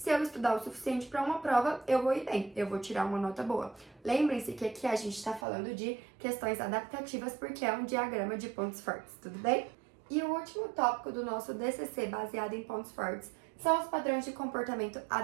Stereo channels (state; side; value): drops out; left; at 5.5 s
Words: eu estudar o suficiente para uma prova, eu vou ir bem, eu vou tirar uma nota boa. Lembrem-se que aqui a gente está falando de questões adaptativas porque é um diagrama de pontos fortes, tudo bem? E o último tópico do nosso DCC baseado em pontos fortes são os padrões de comportamento